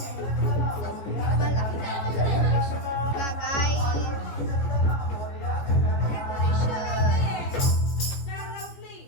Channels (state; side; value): late; right; 15 ms